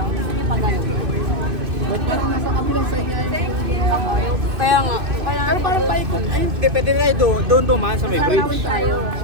Sige pa ganun. Ba't parang nasa kabilang side niya yung... Kaya nga. Pero parang paikot. Ayun. Hindi, pwede na doon dumaan sa may bridge. Tayo.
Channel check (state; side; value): late; left; 2.6 ms